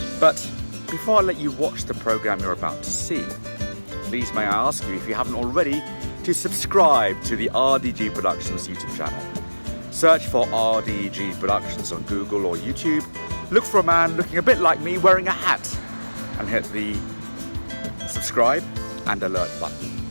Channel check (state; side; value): inverted; both; correlation -1.00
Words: But before I let you watch the program you're about to see, please may I ask you, if you haven't already, to subscribe to the RDG Productions YouTube channel. Search for RDG Productions on Google or YouTube. Look for a man looking a bit like me wearing a hat and hit the subscribe and alert button.